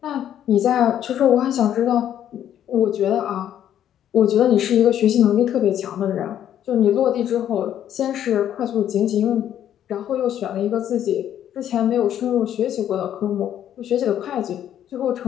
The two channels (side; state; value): right; quieter; 10.6 dB